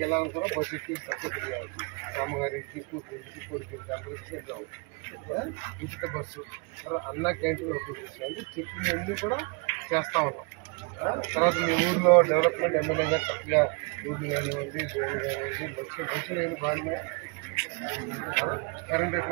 వెళ్ళాలని కూడా బస్సు ఎక్కి సక్సెస్ఫుల్ కావచ్చు. అమ్మగారికి, కూతురికి, కొడుకుకి అందరికి వెళ్ళవచ్చు. ఉచిత బస్సు, అన్న క్యాంటీన్ ఓపెన్ చేస్తాం. అంటే చెప్పినవన్నీ కూడా చేస్తూ ఉన్నాం. తర్వాత మీ ఊళ్ళో డెవలప్మెంట్ ఎమ్మెల్యే గారు చక్కగా రోడ్లు కానివ్వండి, డ్రైన్ కానివ్వండి, మంచి లేని బాగానే. కరెంట్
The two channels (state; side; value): quieter; left; 32.6 dB